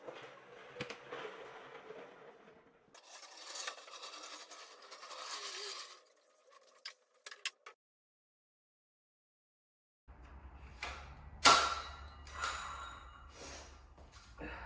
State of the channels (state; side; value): identical; both; correlation 1.00